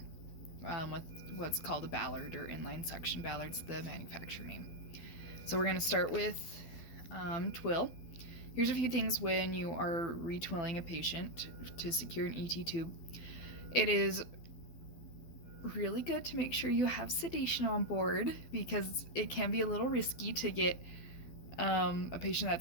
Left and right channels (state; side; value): late; right; 12 ms